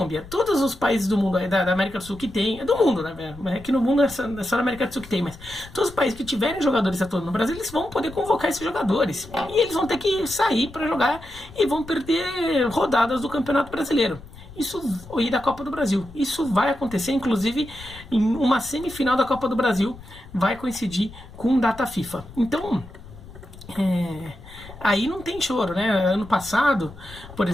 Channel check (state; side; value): noise; left; rumble, 18 dB below the sound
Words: todos os países do mundo, da América do Sul que tem, do mundo, né? É que no mundo é só na América do Sul que tem, mas todos os países que tiverem jogadores atuando no Brasil, eles vão poder convocar esses jogadores. E eles vão ter que sair para jogar e vão perder rodadas do Campeonato Brasileiro. E da Copa do Brasil. Isso vai acontecer, inclusive, em uma semifinal da Copa do Brasil, vai coincidir com data FIFA. Então, aí não tem choro, né? Ano passado, por